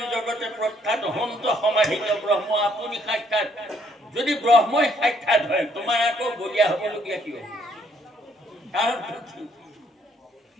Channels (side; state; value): both; normal; correlation 0.68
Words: জগতে প্ৰখ্যাত হন্ত সমাহিত ব্ৰহ্ম আপুনি সাক্ষাৎ। যদি ব্ৰহ্মই সাক্ষাৎ হয়, তোমাৰ আকৌ বলীয়া হবলগীয়া কি হ'ব? কাৰণ